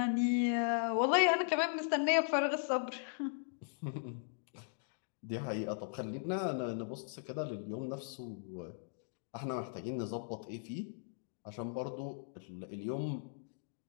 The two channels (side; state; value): right; silent; digital silence